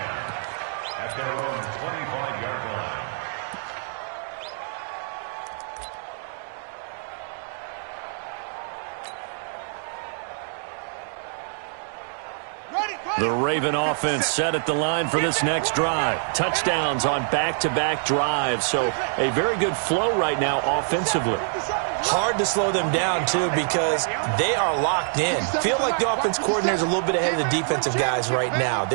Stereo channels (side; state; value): left; silent; 61 dB below the other